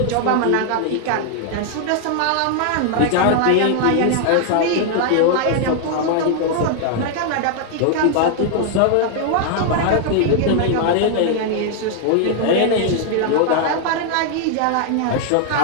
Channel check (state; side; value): different; both; correlation 0.00